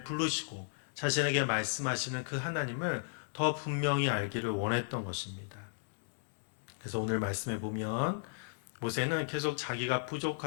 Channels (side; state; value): right; silent; digital silence